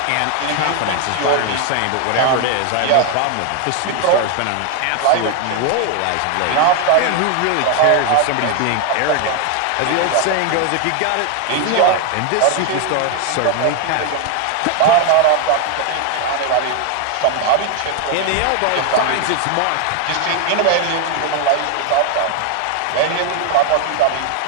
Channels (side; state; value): both; different; correlation 0.01